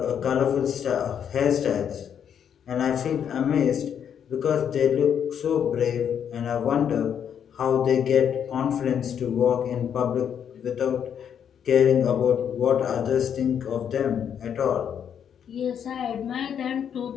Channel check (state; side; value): quieter; right; 8.4 dB